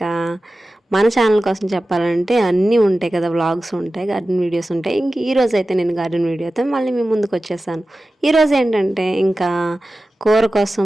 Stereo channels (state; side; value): normal; both; correlation 0.95